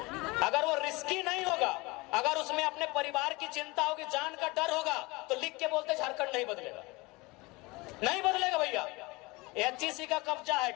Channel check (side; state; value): right; quieter; 24.0 dB